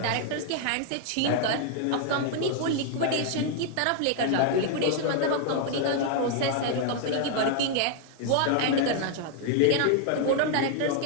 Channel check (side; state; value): both; different; correlation 0.00